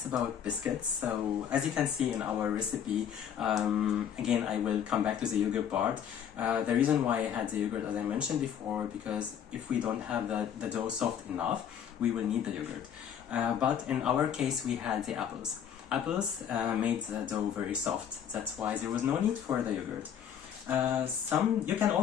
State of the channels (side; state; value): right; quieter; 8.8 dB